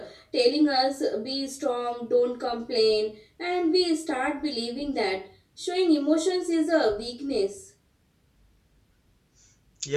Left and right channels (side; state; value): both; identical; correlation 1.00